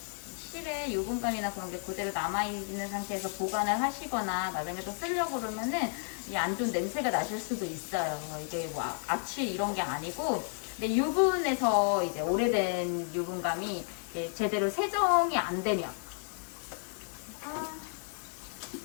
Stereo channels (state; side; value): silent; right; 56 dB below the other